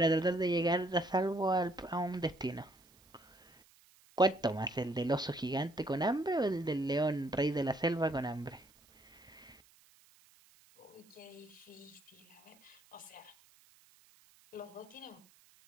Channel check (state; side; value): noise; right; hiss, 29 dB below the sound